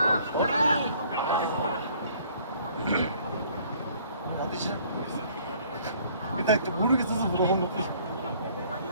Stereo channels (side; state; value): both; inverted; correlation -0.57